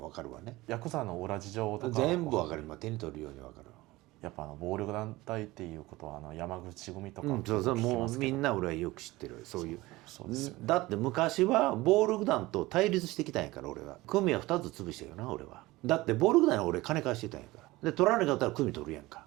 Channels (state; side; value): quieter; left; 19.7 dB